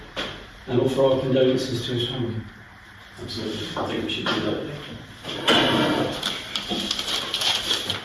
and offer our condolences to his family. Absolutely. I think we should do that.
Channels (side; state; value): both; identical; correlation 1.00